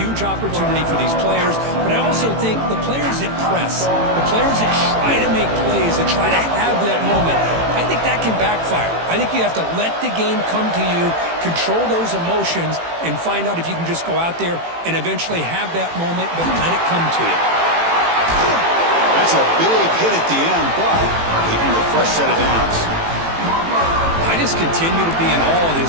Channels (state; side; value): late; left; 18 ms